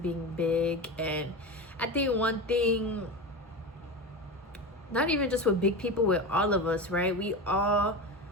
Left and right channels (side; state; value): both; normal; correlation 0.24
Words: being big. And I think one thing, not even just with big people, with all of us, right? We all